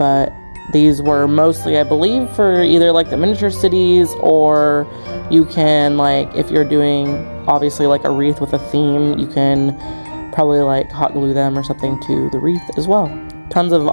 these were mostly, I believe, for either like the miniature cities, or you can, like, if you're doing obviously like a wreath with a theme, you can probably like hot glue them or something to the wreath as well. Tons of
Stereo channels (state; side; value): inverted; both; correlation -1.00